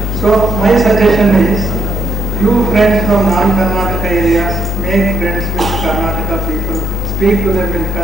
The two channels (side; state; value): both; normal; correlation 0.75